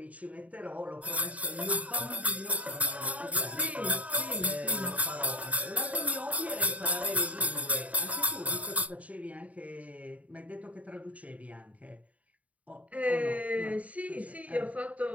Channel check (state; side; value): late; left; 0.069 ms